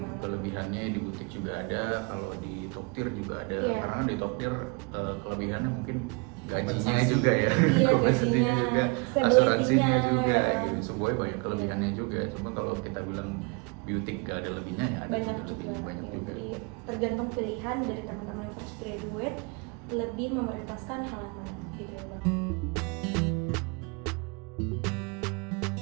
Kelebihannya di butik juga ada, kalau di Toktir juga ada. Iya. Karena di Toktir kelebihannya mungkin gajinya Kompensasi. juga ya, Iya, kompensasinya gajinya, juga, stability-nya, asuransinya juga, ya. gitu. Semuanya banyak kelebihannya juga. Cuma kalau kita bilang beauty gak ada lebihnya ya ada Banyak lebih, juga. banyak juga. Jadi tergantung pilihan dari teman-teman yang fresh graduate lebih memprioritaskan hal yang mana gitu ya, Bang.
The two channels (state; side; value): quieter; left; 31.6 dB